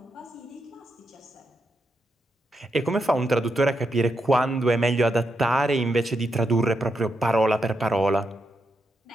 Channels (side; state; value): both; normal; correlation 0.83